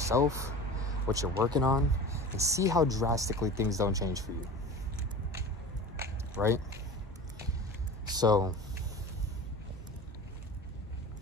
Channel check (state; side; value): normal; both; correlation 0.35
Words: what you're working on, and see how drastically things don't change for you. Right? So,